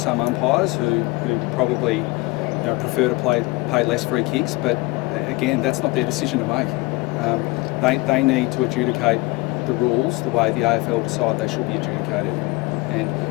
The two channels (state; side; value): quieter; right; 23.7 dB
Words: umpires who probably prefer to pay less free kicks, but again, that's not their decision to make. They need to adjudicate the rules the way the AFL decide they should be adjudicated, and